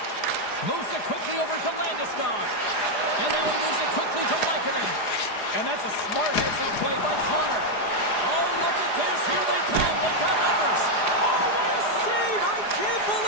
Moves it quickly over to Landeskog. And now he moves it quickly to Lehkonen. And that's a smart heads-up play by Connor. Oh, look at this. Here they come. They've got numbers. Oh, what a save. I can't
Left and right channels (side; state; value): right; late; 4.9 ms